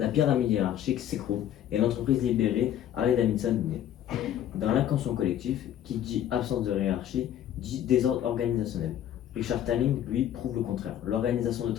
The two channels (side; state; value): right; quieter; 10.9 dB